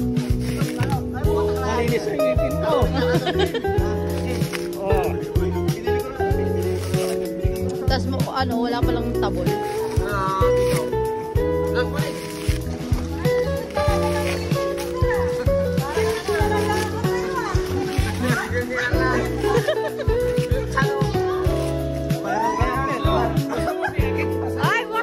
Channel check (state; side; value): identical; both; correlation 1.00